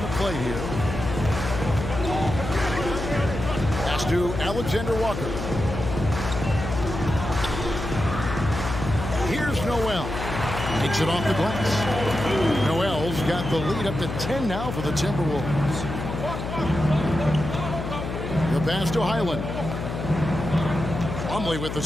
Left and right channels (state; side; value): noise; left; hum, 5 dB below the sound